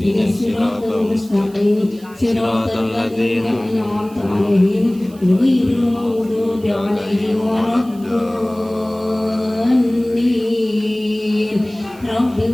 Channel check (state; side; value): noise; right; hiss, 25 dB below the sound